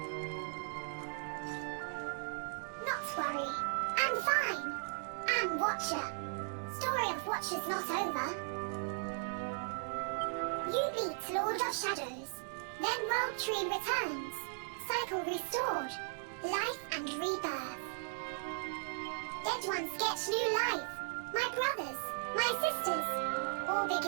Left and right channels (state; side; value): silent; left; digital silence